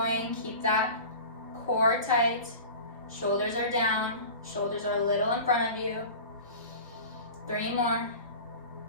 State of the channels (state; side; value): inverted; both; correlation -0.36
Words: Keep that core tight. Shoulders are down. Shoulders are a little in front of you. 3 more.